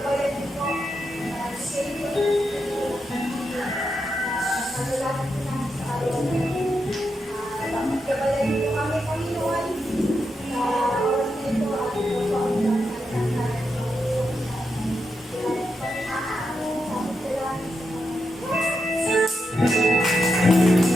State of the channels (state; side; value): normal; both; correlation 0.85